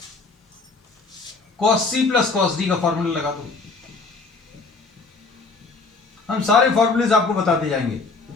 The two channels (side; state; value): right; quieter; 4.0 dB